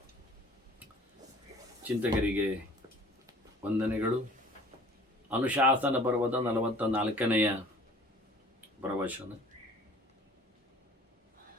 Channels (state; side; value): normal; both; correlation 0.50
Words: ಚಿಂತಕರಿಗೆ ವಂದನೆಗಳು. ಅನುಶಾಸನ ಪರ್ವದ 44ನೆಯ ಪ್ರವಚನ.